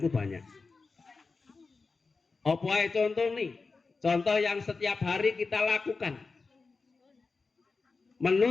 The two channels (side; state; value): right; quieter; 4.2 dB